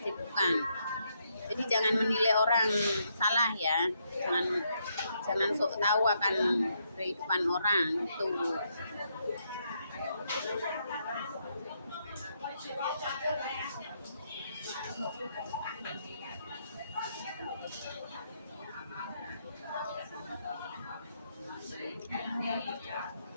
Jadi jangan menilai orang salah ya. Jangan sok tahu akan kehidupan orang itu.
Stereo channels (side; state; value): both; inverted; correlation -0.77